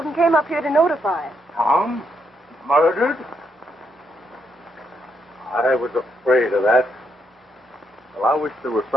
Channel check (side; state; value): both; normal; correlation 0.77